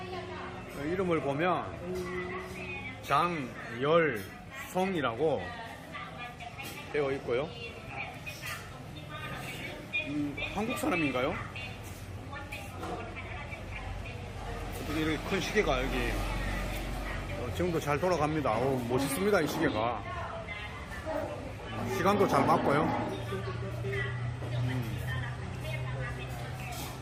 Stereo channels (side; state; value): both; identical; correlation 1.00